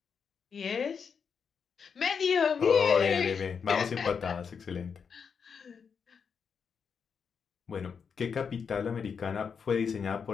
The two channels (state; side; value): quieter; right; 6.3 dB